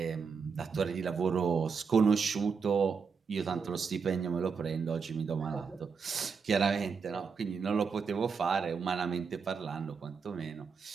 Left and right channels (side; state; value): left; quieter; 5.6 dB